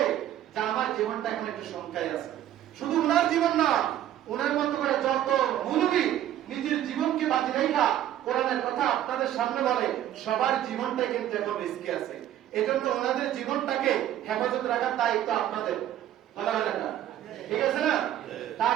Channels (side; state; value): left; quieter; 11.9 dB